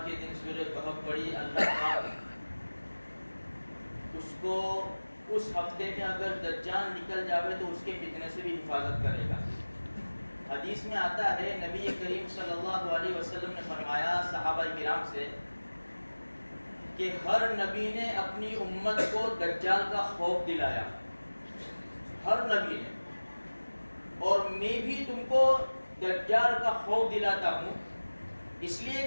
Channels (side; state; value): both; inverted; correlation -1.00